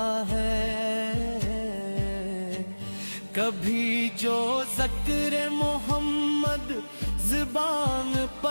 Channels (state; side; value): inverted; both; correlation -1.00